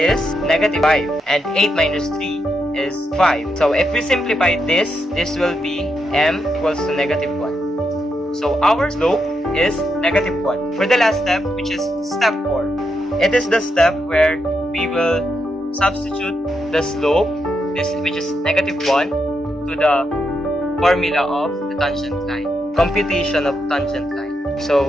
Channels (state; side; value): normal; both; correlation 0.83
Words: negative 5, and 8 minus 3 is 5. So if we simplify this will be m equals to negative 1. So our slope is negative 1. For the last step, which is step 4, it is the step where we will substitute the slope, which is negative 1, to the formula of the tangent line. Computation of tangent line. So